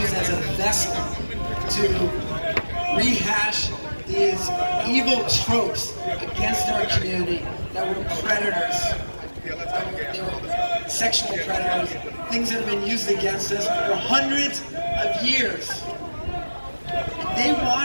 used as a vessel to rehash these evil tropes against our community that were predators. They were sexual predators, things that have been used against us for hundreds of years. They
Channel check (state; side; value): inverted; both; correlation -1.00